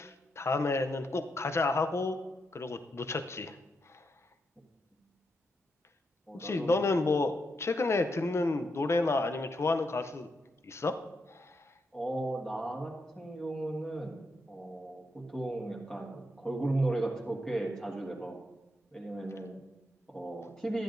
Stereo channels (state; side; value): normal; both; correlation 0.82